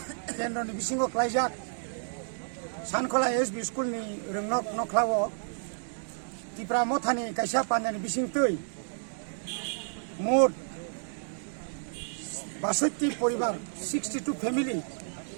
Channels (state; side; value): silent; left; digital silence